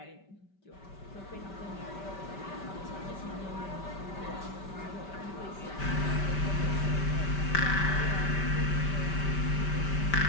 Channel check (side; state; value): right; late; 5.1 ms